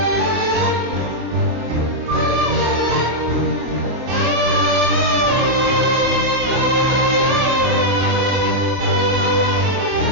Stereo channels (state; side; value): late; left; 24 ms